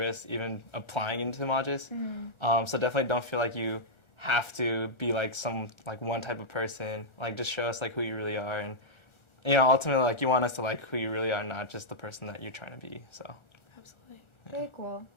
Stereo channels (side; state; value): right; late; 1.4 ms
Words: even applying into Magis. So definitely don't feel like you have to be like one type of person. Like, just show us like who you really are, and you know, ultimately like you want us to like who you really are, not just the person that you're trying to be. So absolutely. Very cool.